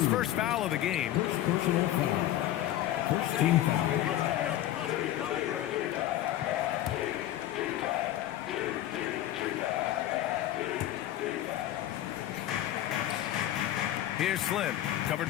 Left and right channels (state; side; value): quieter; right; 13.3 dB